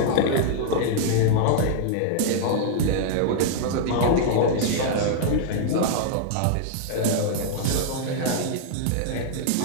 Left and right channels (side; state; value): both; different; correlation -0.01